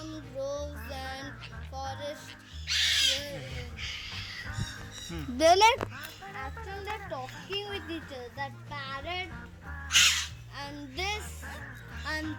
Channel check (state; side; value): identical; both; correlation 1.00